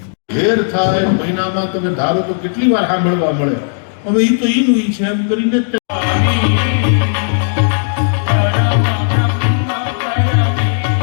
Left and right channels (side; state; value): right; silent; digital silence